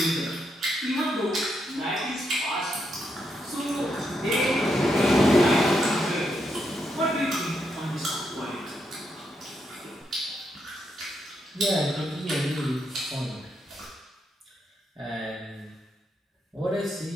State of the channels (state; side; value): normal; both; correlation 0.80